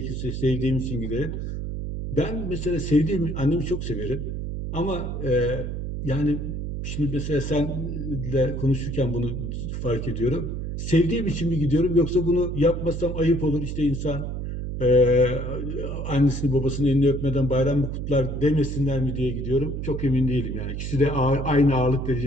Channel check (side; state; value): right; noise; hum, 4 dB below the sound